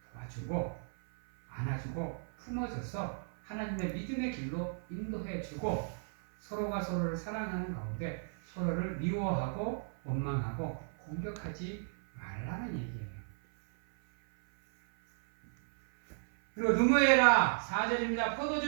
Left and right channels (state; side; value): silent; left; 55 dB below the other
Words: 도와주고 안아주고 품어줘서 하나님의 믿음의 길로 인도해주고 서로가 서로를 사랑하는 가운데 서로를 미워하고 원망하고 공격하지 말라는 얘기예요. 그리고 누무해라 4절입니다.